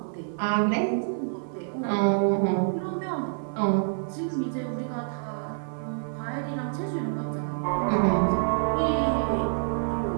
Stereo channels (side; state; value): left; silent; digital silence